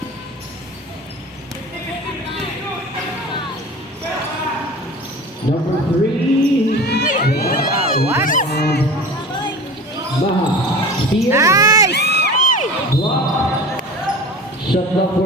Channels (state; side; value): normal; both; correlation 0.36